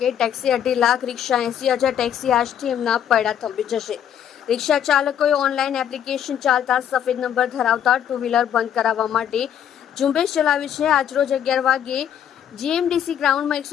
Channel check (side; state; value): right; quieter; 9.6 dB